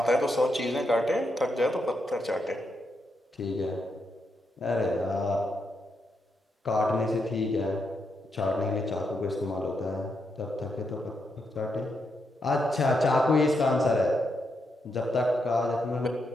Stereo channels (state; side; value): normal; both; correlation 0.82